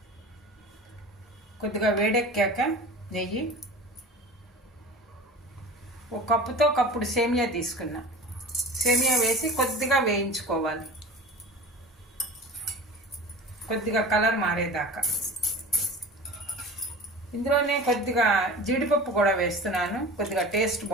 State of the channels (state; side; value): normal; both; correlation 0.37